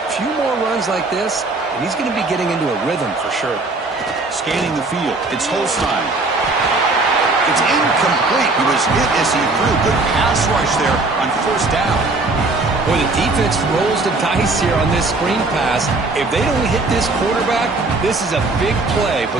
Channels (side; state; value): left; quieter; 3.3 dB